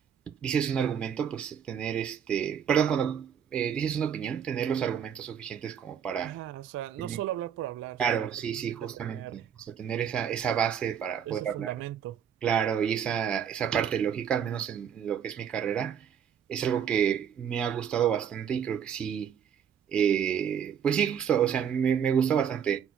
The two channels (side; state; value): left; quieter; 8.2 dB